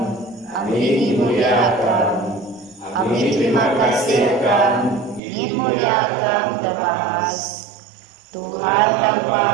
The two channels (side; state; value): left; drops out; at 5.2 s